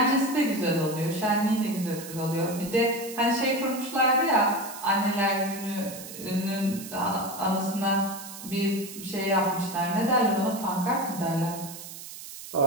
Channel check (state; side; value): noise; right; hiss, 12 dB below the sound